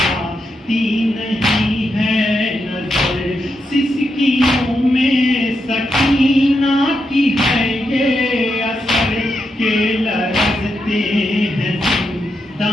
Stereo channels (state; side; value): normal; both; correlation 0.84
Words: नहीं है खुशियों में सकीना की है ये असर के लरजते हैं